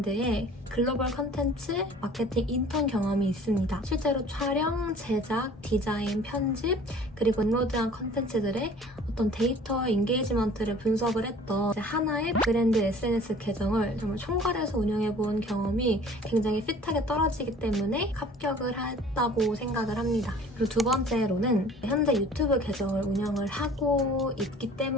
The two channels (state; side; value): normal; both; correlation 0.48